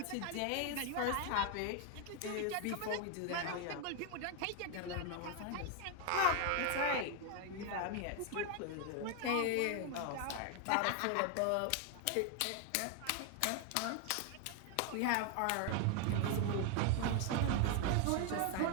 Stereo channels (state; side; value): different; both; correlation 0.01